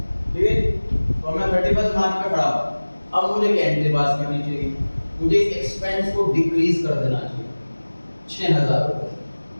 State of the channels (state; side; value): inverted; both; correlation -1.00